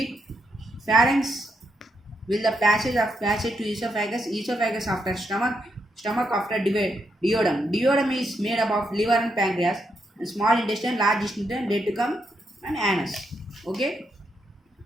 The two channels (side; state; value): both; normal; correlation 0.80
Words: Pharynx will the passage to esophagus after stomach after duodenum. Duodenum is made up of liver and pancreas, and small intestine, large intestine, reticulum and anus. Okay.